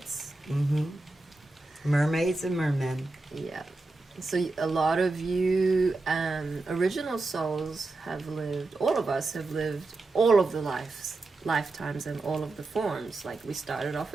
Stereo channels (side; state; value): left; quieter; 3.2 dB